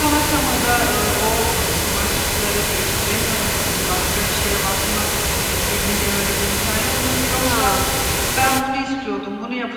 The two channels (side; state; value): both; identical; correlation 1.00